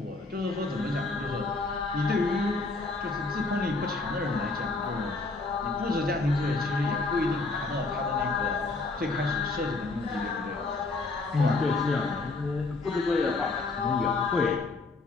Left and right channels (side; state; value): right; quieter; 3.5 dB